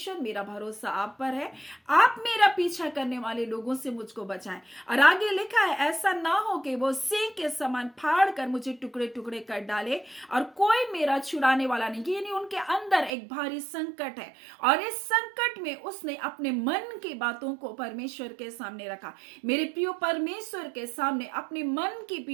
मेरा भरोसा आप पर है, आप मेरा पीछा करने वाले लोगों से मुझको बचाएं। और आगे लिखा है, ऐसा ना हो कि वो सिंह के समान फाड़ कर मुझे टुकड़े टुकड़े कर डाले और कोई मेरा छुड़ाने वाला नहीं। यानी उनके अंदर एक भारी संकट है और इस संकट में उसने अपने मन की बातों को परमेश्वर के सामने रखा। मेरे प्रियो, परमेश्वर के सामने अपने मन की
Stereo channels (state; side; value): drops out; left; at 13.1 s